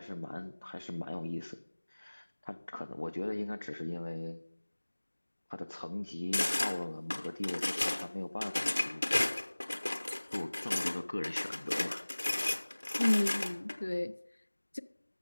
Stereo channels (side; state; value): both; inverted; correlation -1.00